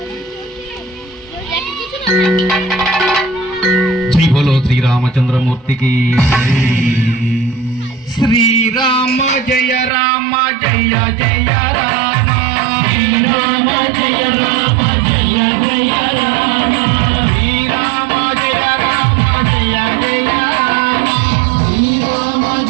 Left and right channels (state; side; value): drops out; left; at 9.9 s